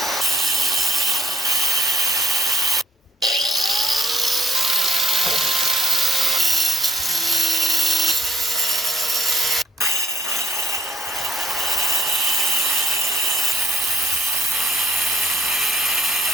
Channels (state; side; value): normal; both; correlation 0.65